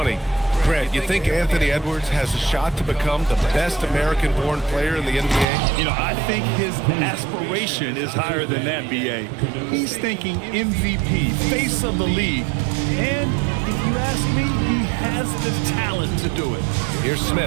Grant, you think Anthony Edwards has a shot to become the best American-born player in the NBA? You know, I think his aspiration is higher than that, B.A. He's thinking MVP, face of the league. And if you ask me, he has the talent to do it. Here's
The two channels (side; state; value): left; drops out; at 5.5 s